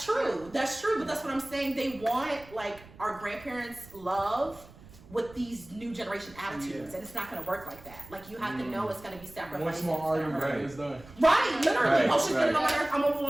true, but that's what I'm saying. They want like our grandparents' love with these new generation attitudes, and it's not going to work like that. Like you have to know it's going to be sacrificed. One small argument is done. Right, literally. Oh, she's getting on my nerves. I'm gonna move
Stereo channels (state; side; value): noise; right; rumble, 21 dB below the sound